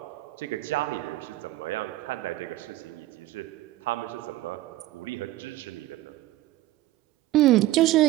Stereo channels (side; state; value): left; quieter; 16.1 dB